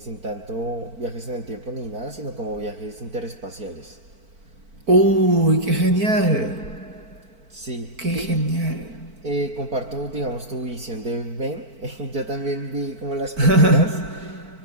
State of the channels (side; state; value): left; late; 4.5 ms